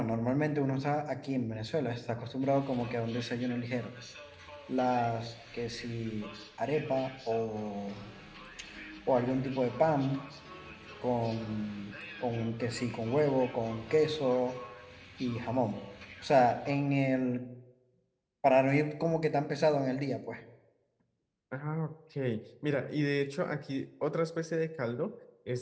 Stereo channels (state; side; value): identical; both; correlation 1.00